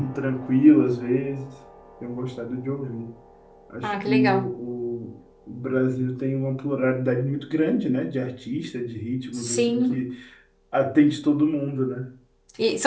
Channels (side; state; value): both; identical; correlation 1.00